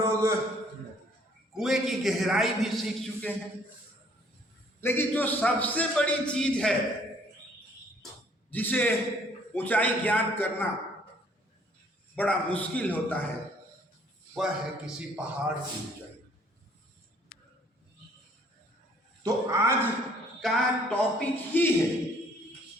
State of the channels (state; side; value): normal; both; correlation 0.61